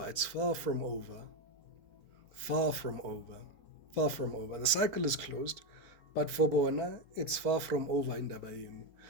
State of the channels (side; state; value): left; late; 4.5 ms